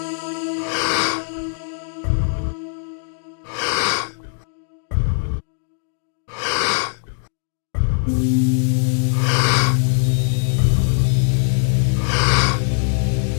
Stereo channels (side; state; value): right; silent; 65 dB below the other